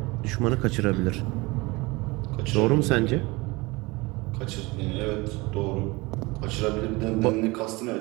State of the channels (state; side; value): quieter; left; 23.7 dB